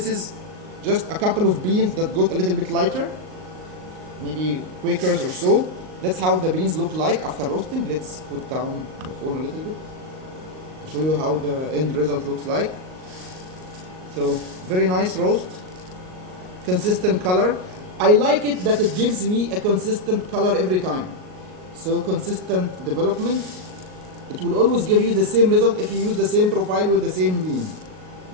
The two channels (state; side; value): late; left; 38 ms